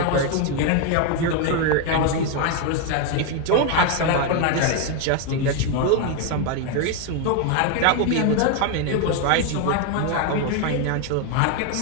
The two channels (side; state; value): both; different; correlation 0.01